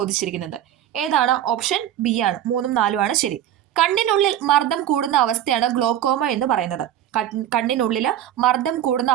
ഏതാണ്? ഓപ്ഷൻ ബി ആണ്. 3, 4 ആണ് ശരി. കണ്ണിനുള്ളിൽ മർദ്ദം കൂടുന്ന അവസ്ഥയാണ് ഗ്ലോക്കോമ എന്ന് പറയുന്നത്. കണ്ണിനുള്ളിൽ മർദ്ദം കൂടുന്ന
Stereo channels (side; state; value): left; quieter; 11.3 dB